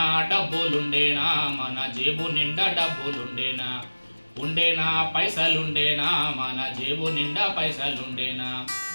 డబ్బులుండేనా, మన జేబు నిండా డబ్బులుండేనా, ఉండేనా పైసలుండేనా, మన జేబు నిండా పైసలుండేనా,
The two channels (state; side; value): inverted; both; correlation -1.00